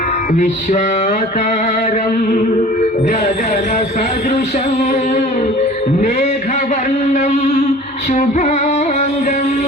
విశ్వాకారం గగన సదృశం మేఘవర్ణం శుభాంగం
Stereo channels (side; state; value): both; normal; correlation 0.44